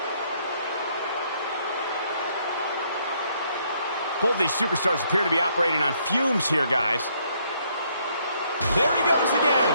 Both these superstars appear to be operating on fumes here, guys. There he goes again.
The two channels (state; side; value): inverted; both; correlation -0.69